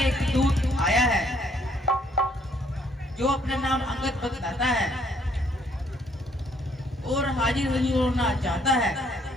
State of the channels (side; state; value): both; normal; correlation 0.66